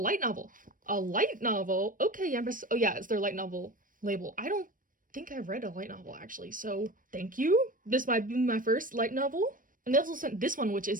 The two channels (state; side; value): late; left; 0.40 ms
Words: novel. A light novel? Okay, Young Press. Oh yeah, it's their light novel label. I don't think I've read a light novel actually, so thank you. This might be my first light novel. And they also sent this one, which